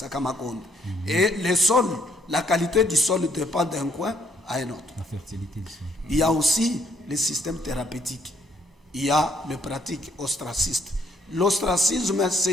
Et le sol, la qualité du sol dépend d'un coin à un autre. La fertilité du sol. Il y a aussi le système thérapeutique. Il y a les pratiques ostracistes. L'ostracisme,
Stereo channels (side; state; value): both; normal; correlation 0.69